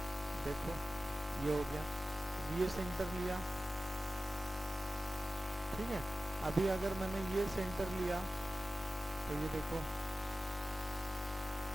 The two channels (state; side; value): normal; both; correlation 0.95